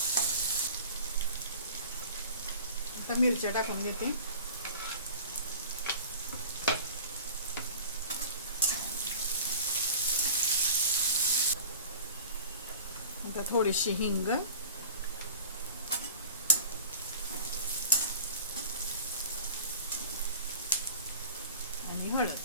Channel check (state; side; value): inverted; both; correlation -0.41